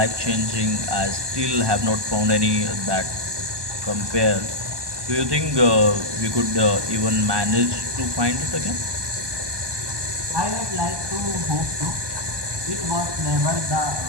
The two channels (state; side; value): late; left; 1.2 ms